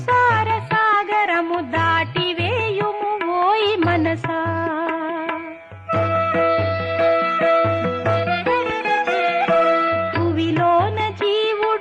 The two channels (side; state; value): both; identical; correlation 1.00